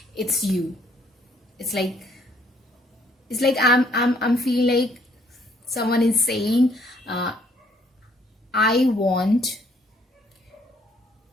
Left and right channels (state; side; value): normal; both; correlation 0.66